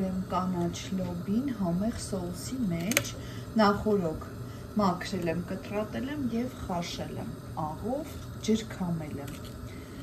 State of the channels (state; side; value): identical; both; correlation 1.00